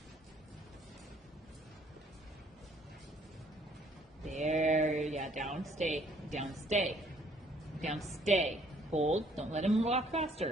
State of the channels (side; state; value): both; normal; correlation 0.63